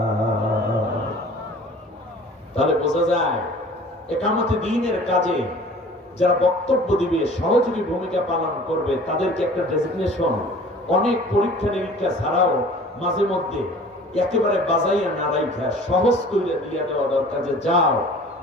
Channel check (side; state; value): both; normal; correlation 0.46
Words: তাহলে বোঝা যায় একামতে দ্বীনের কাজে যারা বক্তব্য দিবে, সহযোগী ভূমিকা পালন করবে, তাদেরকে একটা ডেজিগনেশন, অনেক পরীক্ষা নিরীক্ষা ছাড়াও মাঝে মধ্যে একেবারে বাজাইয়া না রাইখা সহজ করে দিয়ে দেওয়া দরকার, যে যাও,